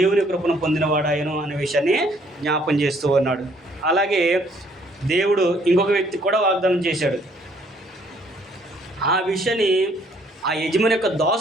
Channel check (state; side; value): normal; both; correlation 0.64